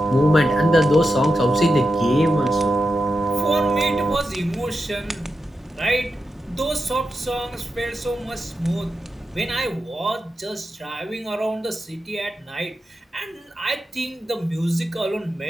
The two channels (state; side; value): normal; both; correlation 0.89